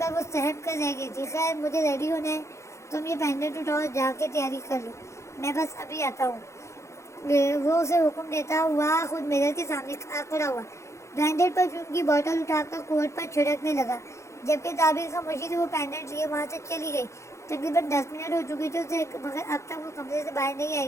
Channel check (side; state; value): right; late; 0.14 ms